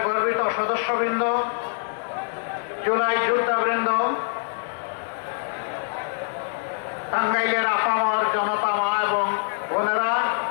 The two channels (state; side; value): silent; right; 62 dB below the other